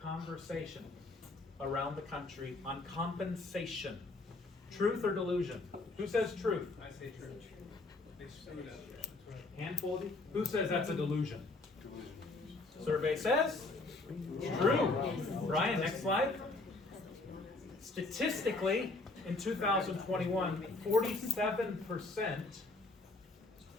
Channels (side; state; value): right; quieter; 3.2 dB